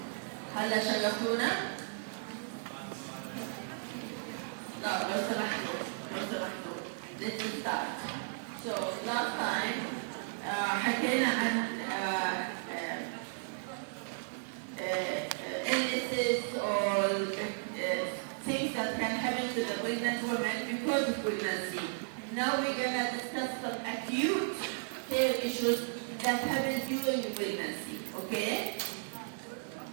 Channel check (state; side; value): silent; left; digital silence